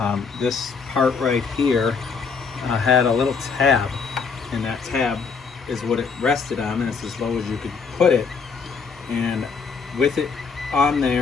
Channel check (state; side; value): quieter; right; 5.3 dB